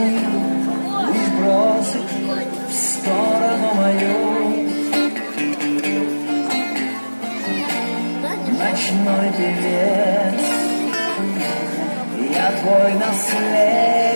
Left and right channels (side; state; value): both; inverted; correlation -1.00